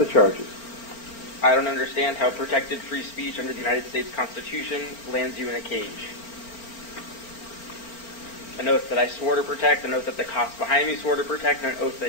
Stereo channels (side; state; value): right; late; 4.4 ms